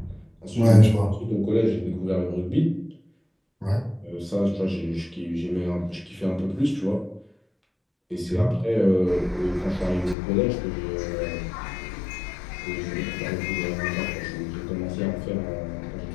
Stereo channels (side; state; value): right; drops out; at 10.2 s